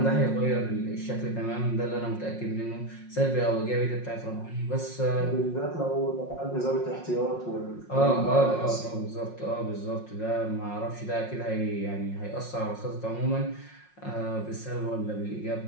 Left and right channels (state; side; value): late; right; 5.5 ms